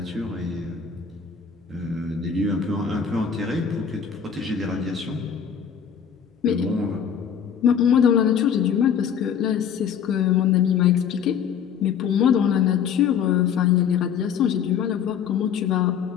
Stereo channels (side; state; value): right; quieter; 7.7 dB